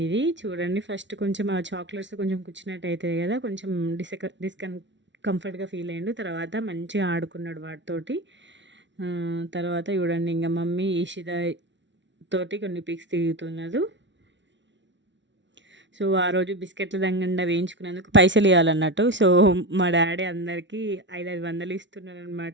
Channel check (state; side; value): late; left; 0.53 ms